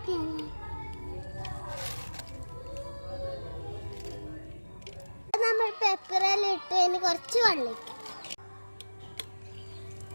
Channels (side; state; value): both; inverted; correlation -1.00